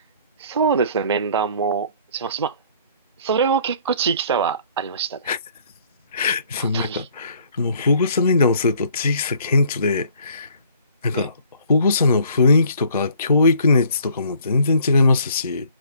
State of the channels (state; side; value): inverted; both; correlation -0.58